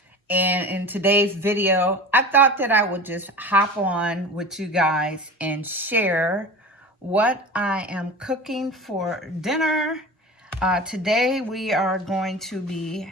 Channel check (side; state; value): both; normal; correlation 0.34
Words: And in today's video, I thought that I would just hop on with you guys and share what I am cooking for dinner. Today we are going to be